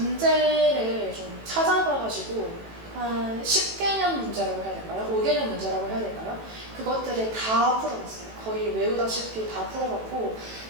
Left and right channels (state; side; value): late; left; 18 ms